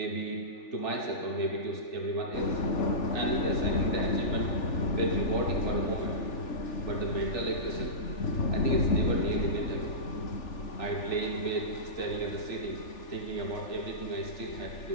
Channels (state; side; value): late; right; 3.4 ms